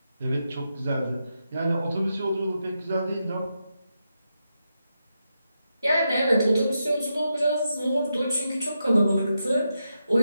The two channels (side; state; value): both; inverted; correlation -0.86